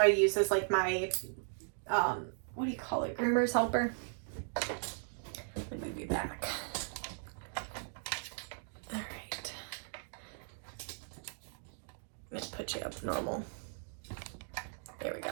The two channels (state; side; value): silent; left; digital silence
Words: I use this like my, what do you call it? Groomer's helper. Let me move you back. Put you up normal. There we go.